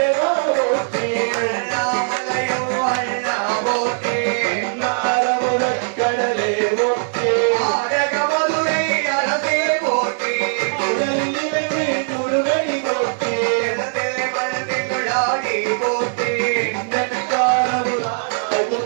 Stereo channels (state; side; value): silent; left; digital silence